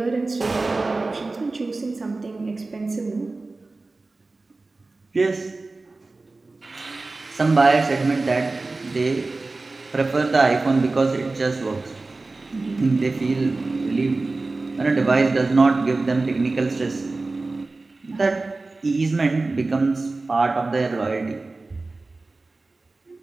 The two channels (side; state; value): left; quieter; 3.4 dB